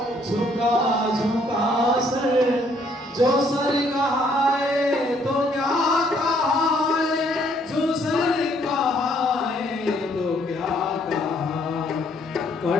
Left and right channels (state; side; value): normal; both; correlation 0.66